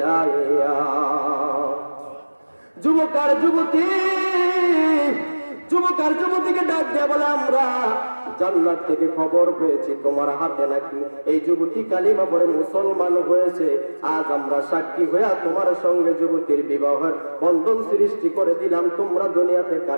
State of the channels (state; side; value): inverted; both; correlation -1.00